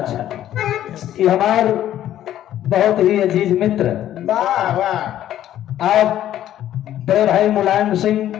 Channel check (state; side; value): quieter; right; 12.1 dB